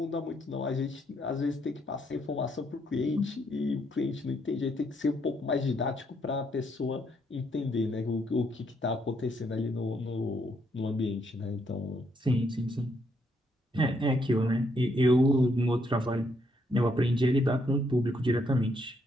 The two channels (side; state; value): both; normal; correlation 0.73